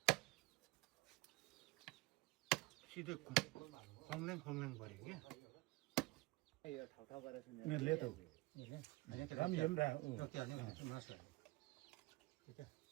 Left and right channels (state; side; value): quieter; left; 21.6 dB